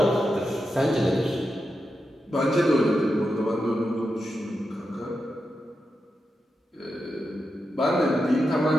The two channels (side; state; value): both; normal; correlation 0.88